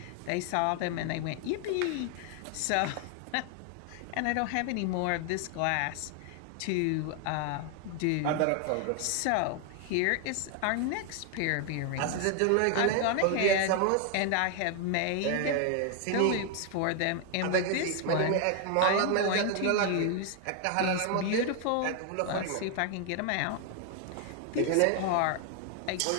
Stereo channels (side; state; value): both; different; correlation 0.00